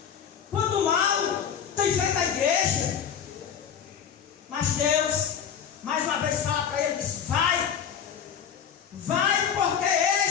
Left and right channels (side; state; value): right; quieter; 8.1 dB